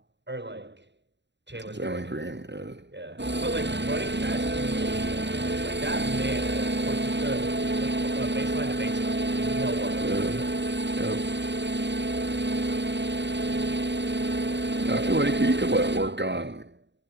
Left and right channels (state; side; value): late; left; 0.51 ms